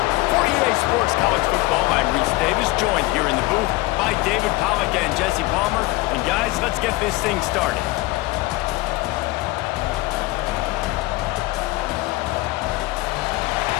For EA Sports College Football, I'm Reese Davis, joined here in the booth by David Pollack and Jesse Palmer. And guys, let's get this thing started.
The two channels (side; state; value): right; quieter; 20.2 dB